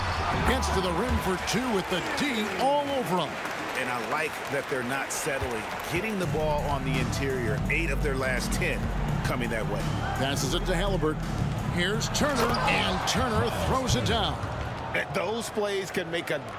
Gets to the rim for 2 with the D all over him. And I like that they're not settling. Getting the ball on the interior, 8 of their last 10 coming that way. Passes it to Haliburton. Here's Turner, and Turner throws it down. Those plays can make a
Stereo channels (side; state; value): both; identical; correlation 1.00